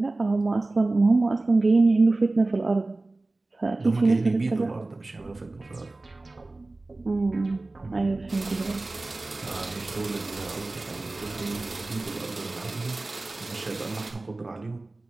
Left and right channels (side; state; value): left; quieter; 3.1 dB